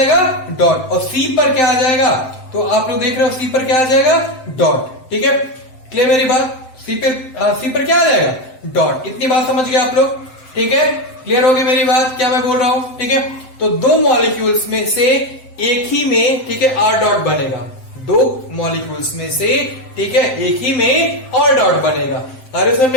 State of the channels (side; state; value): right; late; 7.8 ms